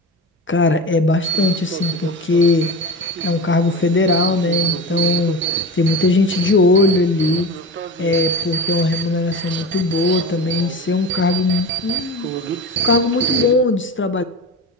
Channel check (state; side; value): normal; both; correlation 0.29